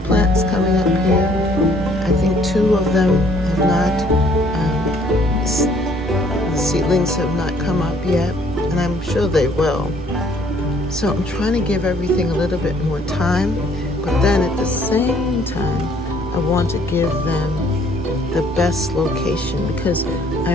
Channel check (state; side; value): normal; both; correlation 0.61